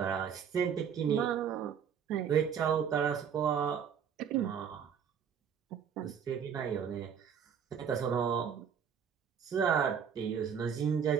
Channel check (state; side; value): quieter; left; 7.6 dB